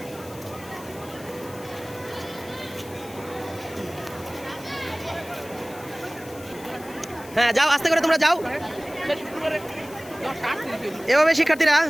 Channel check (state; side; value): noise; left; hiss, 19 dB below the sound